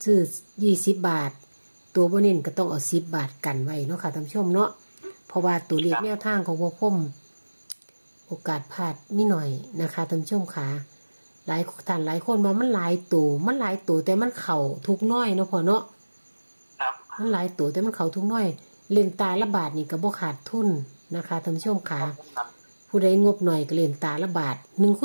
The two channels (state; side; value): inverted; both; correlation -1.00